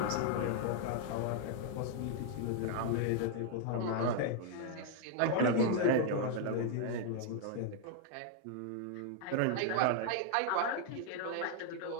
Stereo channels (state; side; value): different; both; correlation 0.00